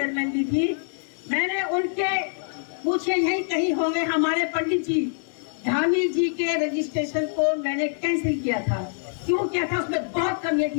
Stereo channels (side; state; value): right; silent; digital silence